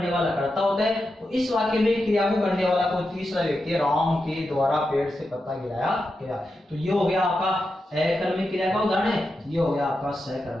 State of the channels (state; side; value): normal; both; correlation 0.88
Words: वाला कर्ता होता है, तो इस वाक्य में क्रिया को करने वाला कोई तीसरा व्यक्ति, राम के द्वारा पेड़ से पत्ता गिराया गया। तो ये हो गया आपका अकर्मक क्रिया का उदाहरण है, ये हो गया आपका